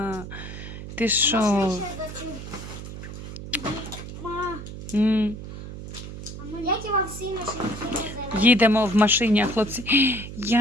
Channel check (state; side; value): noise; right; hum, 10 dB below the sound